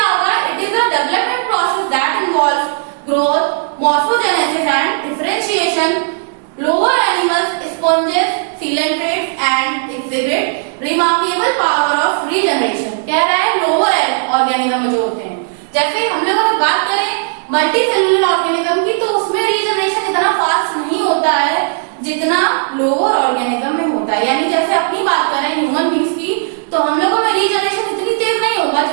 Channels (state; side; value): silent; left; digital silence